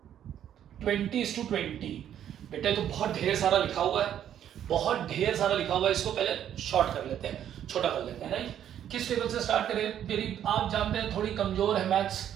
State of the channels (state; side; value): quieter; left; 10.2 dB